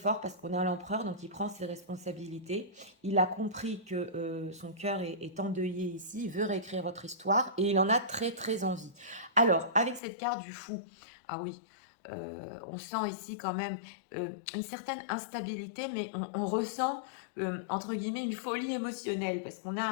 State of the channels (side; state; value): right; drops out; at 10.0 s